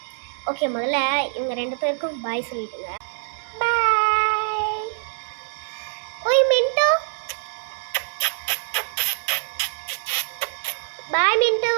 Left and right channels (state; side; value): silent; left; digital silence